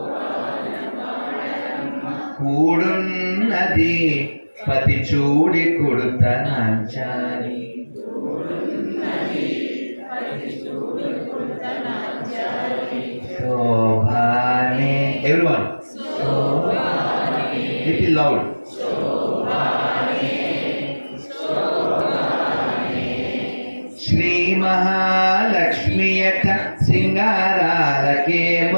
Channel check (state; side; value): inverted; both; correlation -1.00